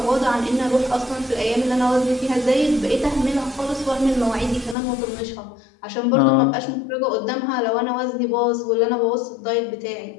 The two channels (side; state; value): right; drops out; at 4.8 s